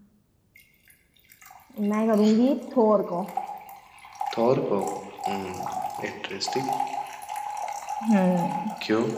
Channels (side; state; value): both; identical; correlation 1.00